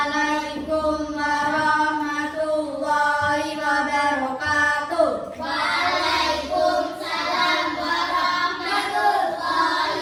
warahmatullahi wabarakatuh. Waalaikumsalam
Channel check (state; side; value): identical; both; correlation 1.00